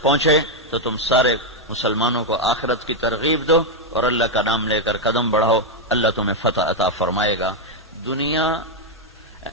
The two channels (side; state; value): both; normal; correlation 0.02